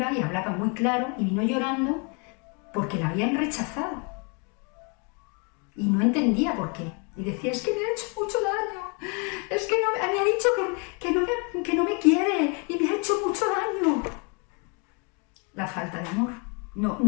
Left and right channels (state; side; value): quieter; right; 34.6 dB